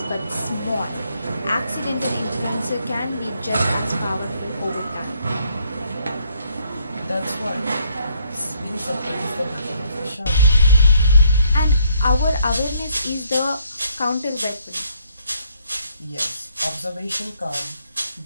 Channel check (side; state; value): both; inverted; correlation -0.70